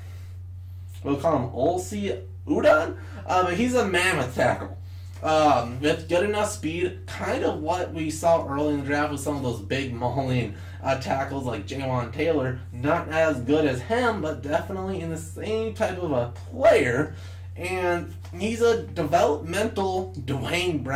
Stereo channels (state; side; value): identical; both; correlation 1.00